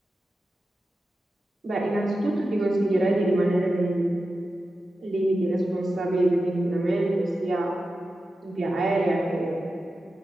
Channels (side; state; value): both; normal; correlation 0.92